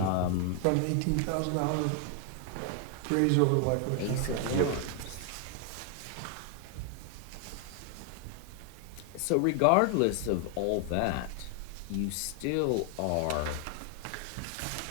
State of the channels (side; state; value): both; different; correlation 0.00